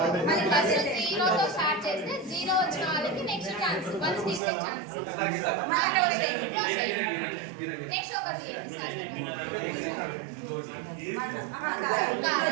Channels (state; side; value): drops out; left; at 4.4 s